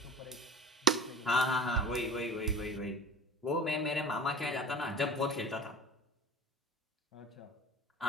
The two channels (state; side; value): normal; both; correlation 0.38